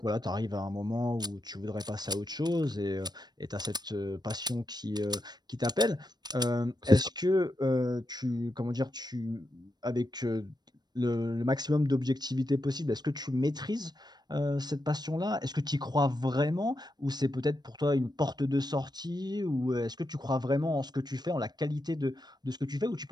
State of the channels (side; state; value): left; late; 0.20 ms